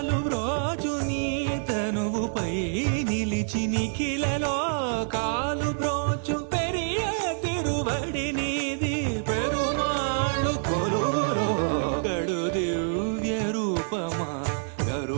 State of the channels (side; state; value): left; silent; digital silence